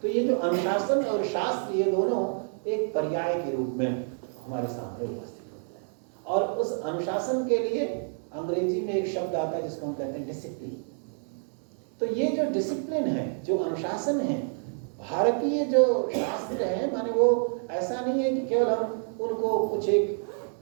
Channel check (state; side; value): silent; left; 59 dB below the other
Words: तो ये जो अनुशासन और शास्त्र, ये दोनों एक पर्याय के रूप में हमारे सामने उपस्थित होते हैं। और उस अनुशासन के लिए अंग्रेजी में एक शब्द आता है जिसको हम कहते हैं डिसिप्लिन। तो ये जो डिसिप्लिन है, जो अनुशासन है, भारतीय जो शास्त्र है, माने वो ऐसा नहीं है कि केवल हम उनको कुछ एक